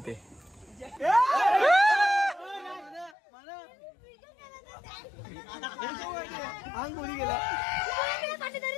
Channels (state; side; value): drops out; right; at 3.2 s